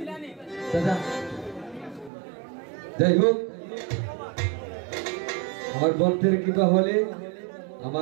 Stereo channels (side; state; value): left; drops out; at 2.1 s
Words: দাদা। যাই হোক, আমার ভক্তের কৃপা হলে